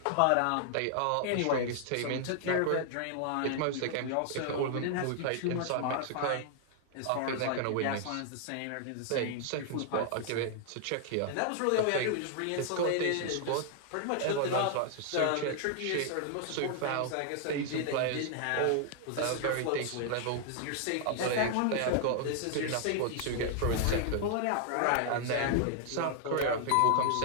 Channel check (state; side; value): different; both; correlation 0.00